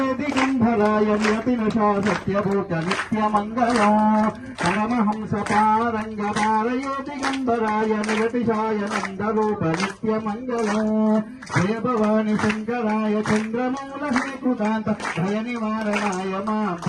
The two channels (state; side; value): identical; both; correlation 1.00